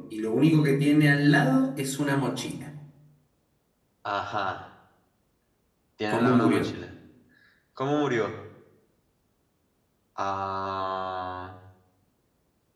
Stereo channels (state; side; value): identical; both; correlation 1.00